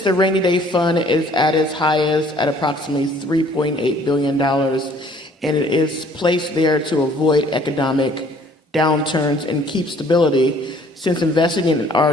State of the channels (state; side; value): normal; both; correlation 0.57